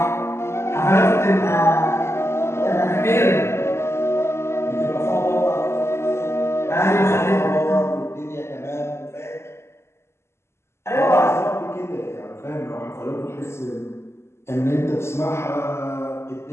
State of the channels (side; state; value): right; late; 0.13 ms